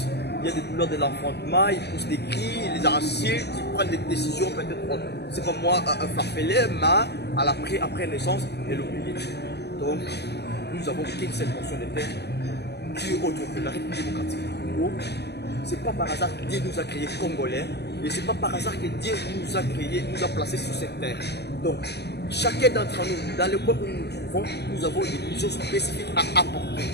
Il y a des douleurs de l'enfantement, ils poussent des cris, ils les insultent, ils prennent des décisions peut-être, c'est comme moi, farfelées, mais après naissance, elle oublie. Donc, nous avons qu'une seule portion de terre, Dieu autre que la République démocratique du Congo. C'est pas par hasard que Dieu nous a créés Congolais et c'est pas par hasard que Dieu nous a créés, nous a placés sur cette terre. Donc, chacun d'entre nous, dans le point où nous nous trouvons, nous avons des missions spécifiques à apporter.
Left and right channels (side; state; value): right; late; 0.48 ms